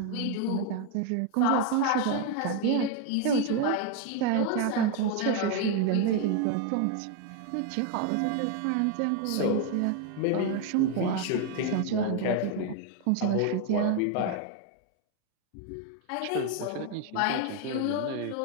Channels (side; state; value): both; different; correlation 0.01